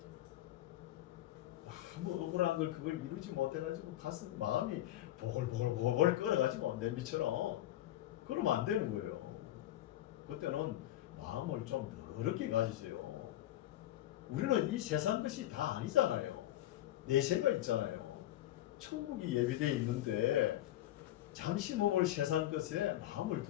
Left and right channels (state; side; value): quieter; right; 14.0 dB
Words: 너무 억울한 걸 그걸 이루지 못해가지고 가슴 마음이 보글보글 끓어가지고 냄비처럼, 그러면 안 되는 거예요. 그때는 마음을 좀 넓게 가지세요. 우리는 이 세상 것이 다 아니잖아요. 내세가 있잖아요. 천국이 예비되어 있는데 잠시 몸을 세상 것에 마음을